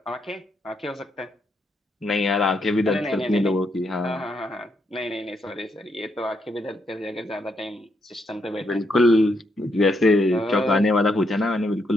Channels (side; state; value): both; normal; correlation 0.78